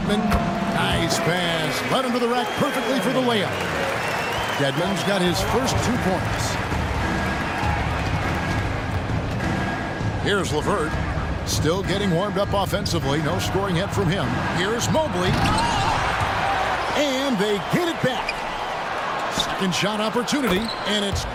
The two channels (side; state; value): both; identical; correlation 1.00